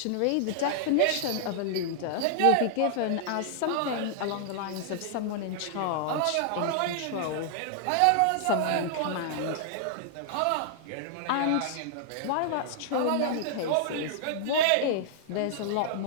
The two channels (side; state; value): both; different; correlation -0.01